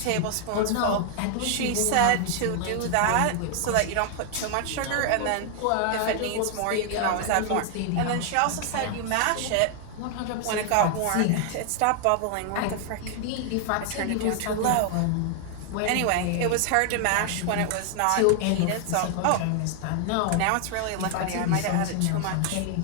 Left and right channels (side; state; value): both; different; correlation 0.00